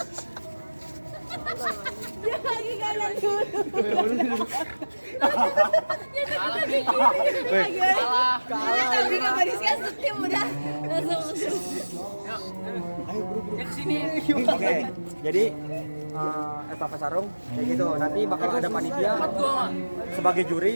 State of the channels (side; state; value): both; inverted; correlation -1.00